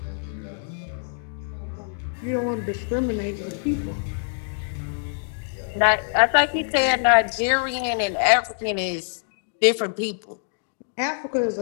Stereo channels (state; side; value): silent; right; digital silence